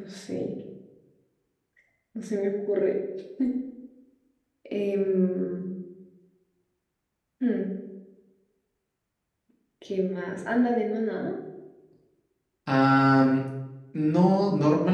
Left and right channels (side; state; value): both; identical; correlation 1.00